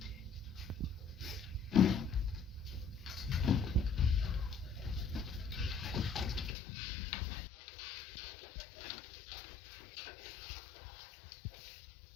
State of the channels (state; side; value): drops out; right; at 6.6 s